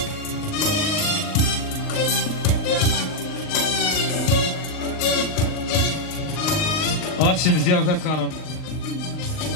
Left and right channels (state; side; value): late; right; 39 ms